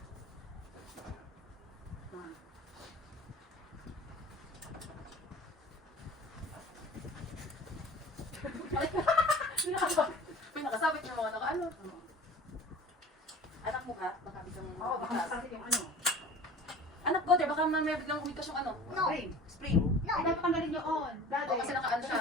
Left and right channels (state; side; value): normal; both; correlation 0.41